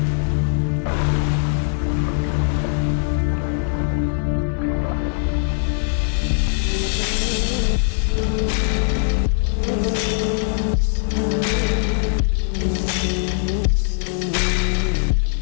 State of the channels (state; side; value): silent; right; digital silence